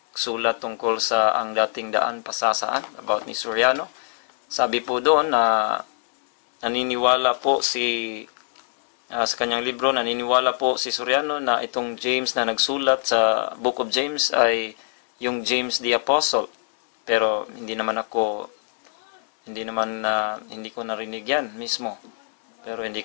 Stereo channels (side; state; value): right; silent; 62 dB below the other